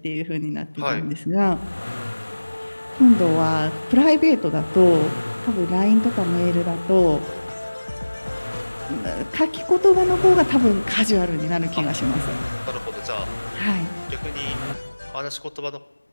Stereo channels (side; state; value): both; inverted; correlation -1.00